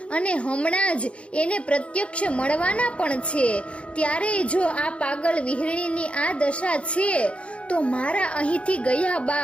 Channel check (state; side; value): late; right; 0.060 ms